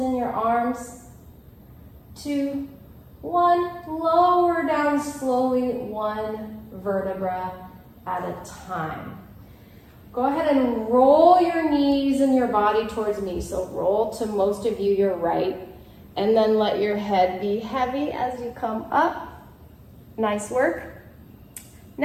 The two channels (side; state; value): both; identical; correlation 1.00